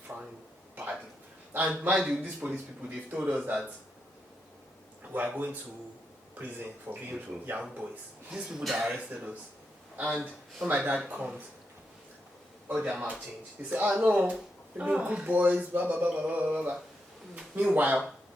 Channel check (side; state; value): both; normal; correlation 0.84